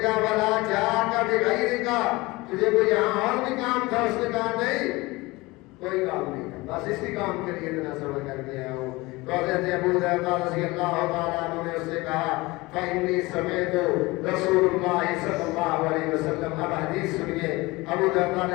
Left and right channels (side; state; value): right; quieter; 22.1 dB